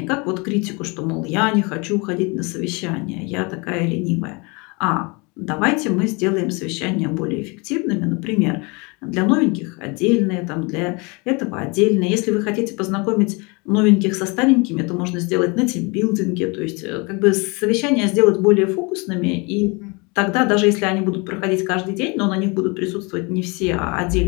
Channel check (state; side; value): quieter; right; 29.0 dB